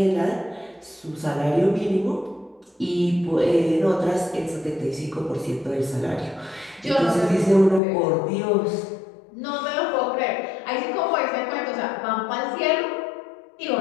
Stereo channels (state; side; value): drops out; right; at 7.8 s